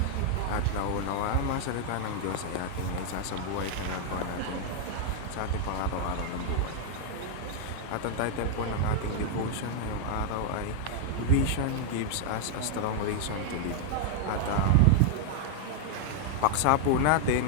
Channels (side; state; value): both; different; correlation -0.01